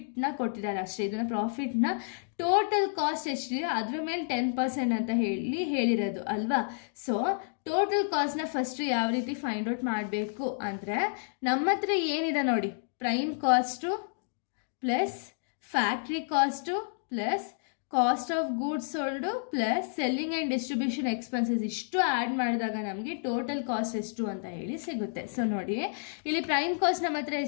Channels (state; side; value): silent; right; digital silence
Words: ಕೊಟ್ಟಿದ್ದಾರೆ ಅಷ್ಟೇ. ಇದನ್ನು ಪ್ರಾಫಿಟ್ನ ಟೋಟಲ್ ಕಾಸ್ಟ್ ಎಷ್ಟಿದೆ ಅದ್ರ ಮೇಲೆ 10% ಅಂತ ಹೇಳಿರೋದು ಅಲ್ವಾ. ಸೊ ಟೋಟಲ್ ಕಾಸ್ಟ್ನ ಫಸ್ಟ್ ಯಾವ ರೀತಿ ಫೈಂಡ್ ಔಟ್ ಮಾಡಬೇಕು ಅಂದರೆ, ನಮ್ಮ ಹತ್ರ ಏನಿದೆ ನೋಡಿ, prime cost plus factory cost plus cost of goods sold plus selling and distribution expenses ಇಷ್ಟು ಆ್ಯಡ್ ಮಾಡಿದಾಗ ನಮಗೆ ಟೋಟಲ್ ಕಾಸ್ಟ್ ಎಷ್ಟು ಅಂತ ಹೇಳಿ ಸಿಗುತ್ತೆ. ಸೊ ನೋಡಿ, ಇಲ್ಲಿ ಪ್ರೈಮ್ ಕಾಸ್ಟ್ ನಮ್ಮ ಹತ್ರ